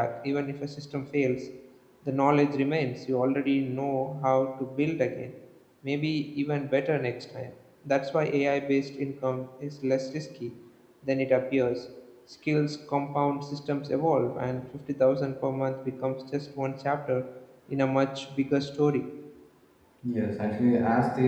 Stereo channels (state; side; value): identical; both; correlation 1.00